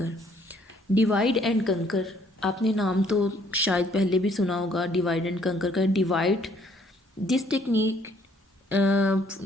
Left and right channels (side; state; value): both; normal; correlation 0.63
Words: Divide and conquer, आपने नाम तो शायद पहले भी सुना होगा divide and conquer का. Divide this technique